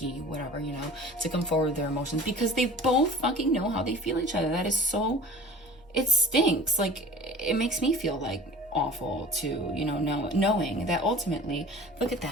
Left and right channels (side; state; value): right; noise; hum, 28 dB below the sound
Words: whatever, you know, to come forward with their emotions, because they both fucking know how they feel each other. That is so, it stinks. Like, it makes me feel like awful to, you know, knowing that ultimately, look at